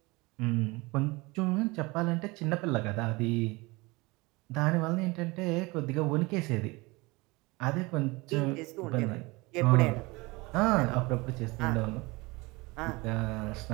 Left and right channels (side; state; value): left; quieter; 23.9 dB